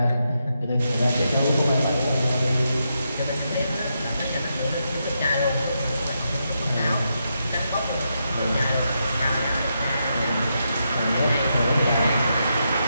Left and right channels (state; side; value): inverted; both; correlation -0.83